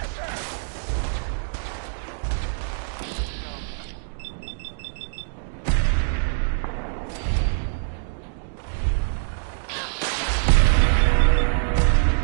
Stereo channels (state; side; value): silent; left; digital silence